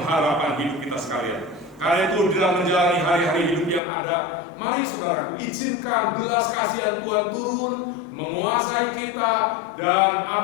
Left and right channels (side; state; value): right; drops out; at 3.8 s